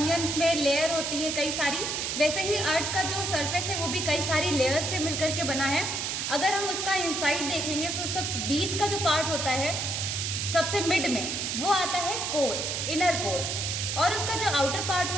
में लेयर होती है कई सारी, वैसे ही अर्थ का जो सरफेस है वो भी कई सारी लेयर से मिलकर के बना है. अगर हम उसका इनसाइड देखेंगे तो सब बीच का जो पार्ट होता है सबसे मिड में वो आता है कोर, इनर कोर, और उसका जो आउटर पार्ट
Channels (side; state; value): right; noise; hiss, 2 dB below the sound